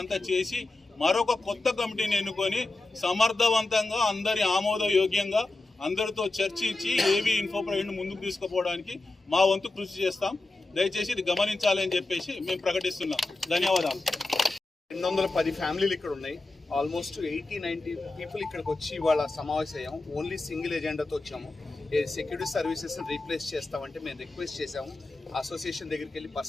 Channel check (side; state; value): right; quieter; 3.1 dB